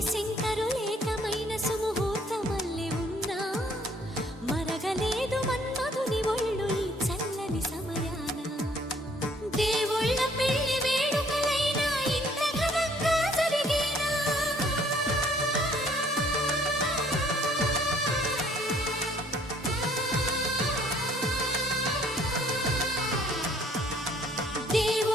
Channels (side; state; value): both; normal; correlation 0.61